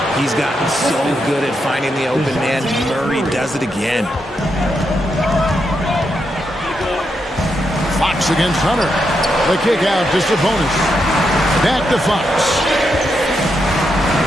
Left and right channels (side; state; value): both; normal; correlation 0.82